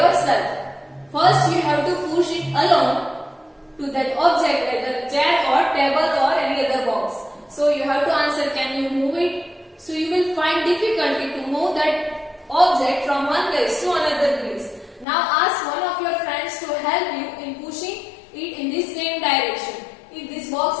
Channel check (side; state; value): right; drops out; at 15.1 s